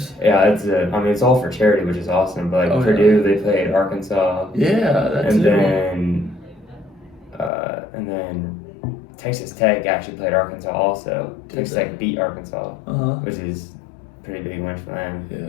Yeah, it's all for charity, which is awesome. But like Purdue, they played Arkansas. Yeah, that's and then Texas Tech actually played Arkansas also. Texas Tech beat Arkansas, which is a pretty big win for them.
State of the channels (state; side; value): drops out; right; at 7.5 s